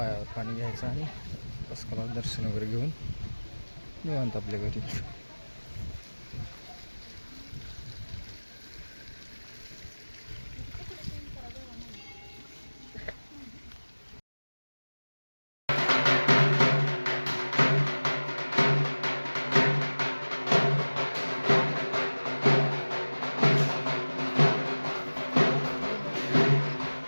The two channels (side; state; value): both; inverted; correlation -1.00